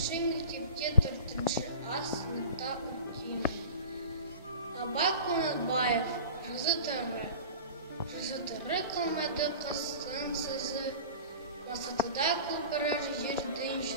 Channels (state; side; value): inverted; both; correlation -0.36